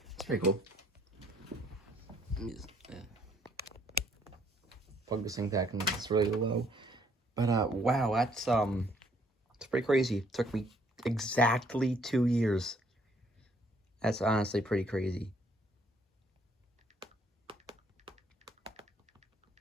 it's pretty cool. Let me just, plug this thing back, and it's really low. But wow, that's it's pretty crazy. It took me exactly 2 years. That's honestly pretty crazy.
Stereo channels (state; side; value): normal; both; correlation 0.65